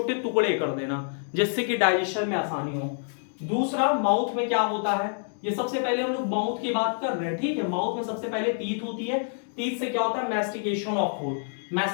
टुकड़े कर देना, जिससे कि डाइजेशन में आसानी हो। दूसरा, माउथ में क्या होता है, ये सबसे पहले हम लोग माउथ की बात कर रहे हैं, ठीक है। माउथ में सबसे पहले टीथ होती है, टीथ से क्या होता है? Mastication of food.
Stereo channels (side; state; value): right; silent; digital silence